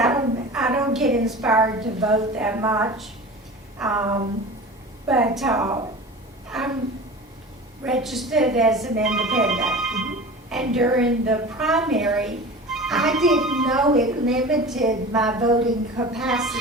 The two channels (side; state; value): both; normal; correlation 0.35